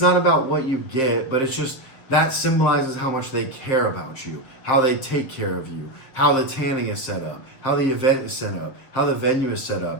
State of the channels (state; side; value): late; right; 7.5 ms